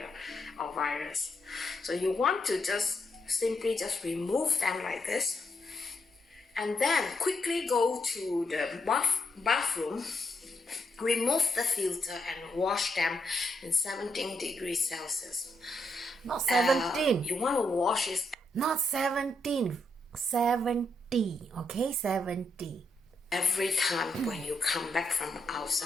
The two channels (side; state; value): both; normal; correlation 0.79